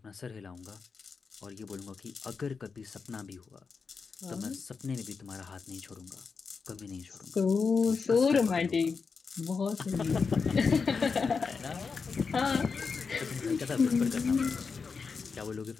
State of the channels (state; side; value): quieter; right; 5.1 dB